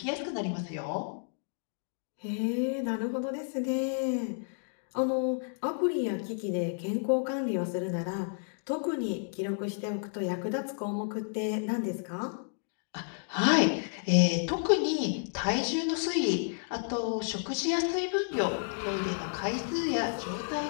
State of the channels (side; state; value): right; silent; digital silence